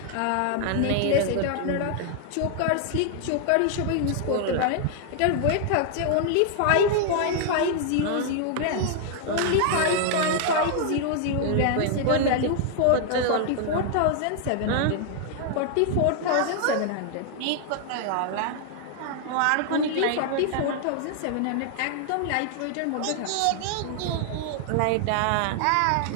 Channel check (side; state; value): both; different; correlation 0.00